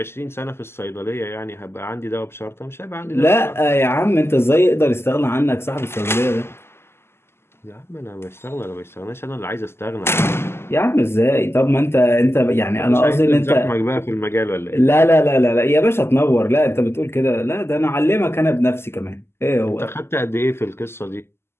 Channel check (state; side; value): late; right; 0.12 ms